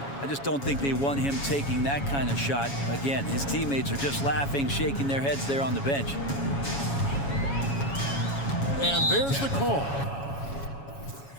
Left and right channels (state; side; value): late; right; 7.2 ms